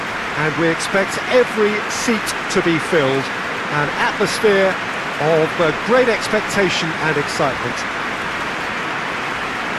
and we expect every seat to be filled. An atmosphere of great expectation and excitement.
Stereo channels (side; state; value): both; identical; correlation 1.00